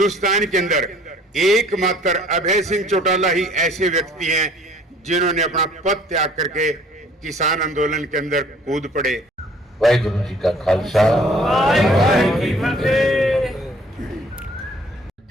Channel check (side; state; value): both; normal; correlation 0.55